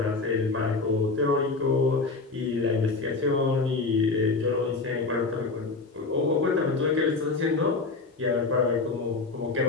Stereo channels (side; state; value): right; quieter; 3.9 dB